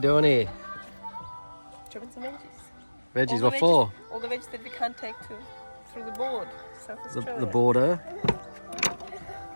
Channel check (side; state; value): both; inverted; correlation -1.00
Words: here? Chopping some veggies. Veggies, what for? All the veggies that we can't take through the board. South Australia. The border.